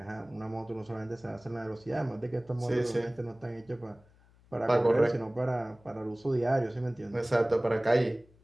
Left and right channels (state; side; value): noise; left; hum, 28 dB below the sound